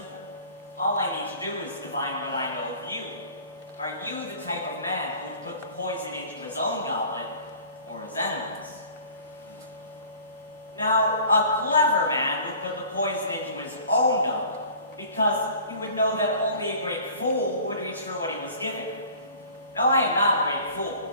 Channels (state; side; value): inverted; both; correlation -0.46